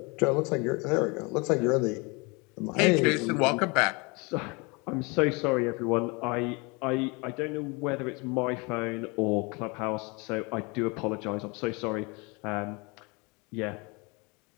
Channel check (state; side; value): quieter; right; 28.7 dB